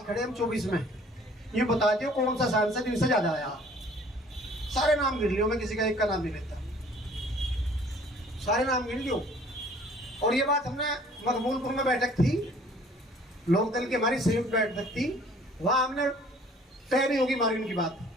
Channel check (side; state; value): both; normal; correlation 0.54